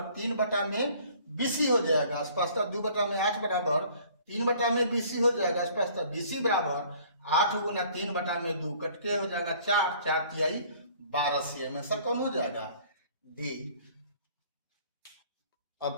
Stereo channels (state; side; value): inverted; both; correlation -0.55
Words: 3 बटा में BC हो जाएगा। स्पष्ट 2 बटा में 8 बराबर 3 बटा में BC हो जाएगा। स्पष्ट BC बराबर 8 गुना 3 बटा में 2 कटके हो जाएगा 4, 4 तिहाई 12 cm। आंसर कौन हो जाएगा, डी।